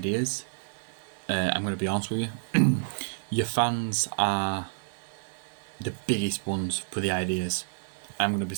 I'm going to be honest with you, your fans are the biggest ones for the ideas. I'm going to be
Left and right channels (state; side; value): silent; left; digital silence